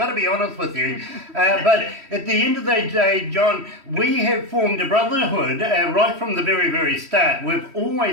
to be honest with you. But at the end of the day, John, we have formed a brotherhood right from the very, very start. We've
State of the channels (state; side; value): late; left; 3.1 ms